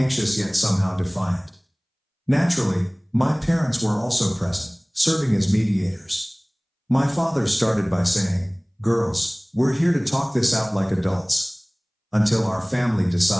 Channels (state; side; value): identical; both; correlation 1.00